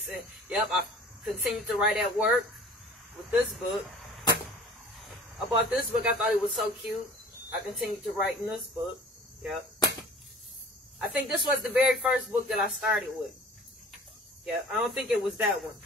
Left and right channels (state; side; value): normal; both; correlation 0.47